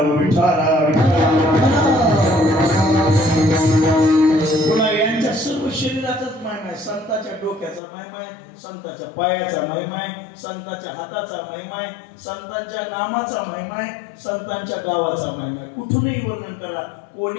पुन्हा यांच्या सर्व शरीराचाच महिमा आहे. संताच्या डोक्याचा महिमा आहे, संताच्या पायाचा महिमा आहे, संताच्या हाताचा महिमा आहे, संतांच्या नामाचा महिमा आहे, संतांच्या गावाचा महिमा आहे. कुठूनही वर्णन करा,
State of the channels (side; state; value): right; drops out; at 7.8 s